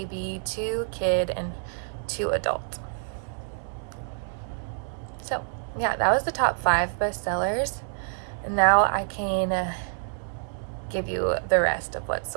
2 kid, and 2 adult. So yeah, that was the top 5 bestsellers. And now I can give you the rest of what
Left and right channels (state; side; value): silent; left; 60 dB below the other